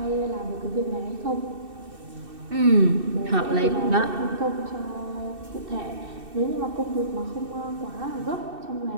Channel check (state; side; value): late; left; 2.6 ms